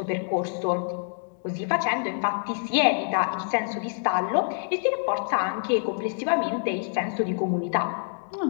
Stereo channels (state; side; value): silent; right; digital silence